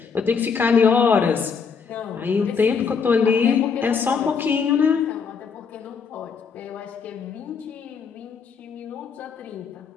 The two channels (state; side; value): quieter; right; 5.8 dB